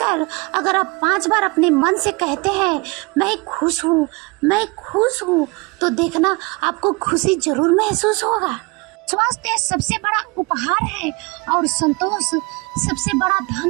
अगर आप 5 बार अपने मन से कहते हैं, मैं खुश हूँ, मैं खुश हूँ, तो देखना आपको खुशी जरूर महसूस होगा। स्वास्थ्य सबसे बड़ा उपहार है और संतोष सबसे बड़ा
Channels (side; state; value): left; quieter; 27.5 dB